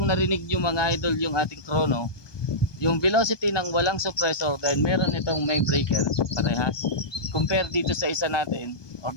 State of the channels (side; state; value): right; late; 1.2 ms